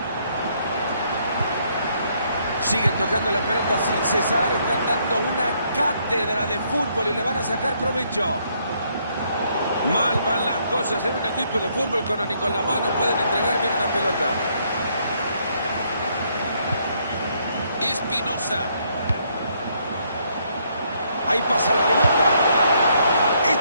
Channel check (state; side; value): inverted; both; correlation -0.71